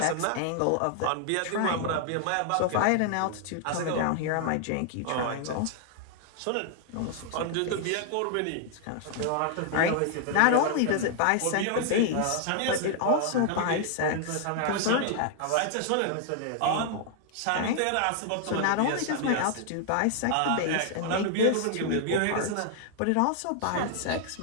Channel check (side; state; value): both; different; correlation 0.00